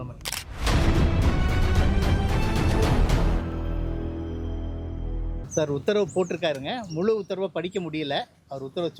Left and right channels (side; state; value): both; identical; correlation 1.00